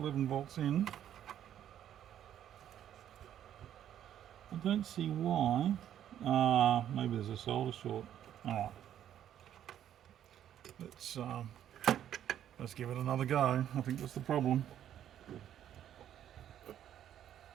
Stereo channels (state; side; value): quieter; left; 10.6 dB